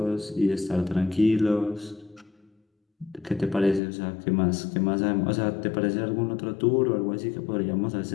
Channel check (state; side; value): drops out; right; at 3.8 s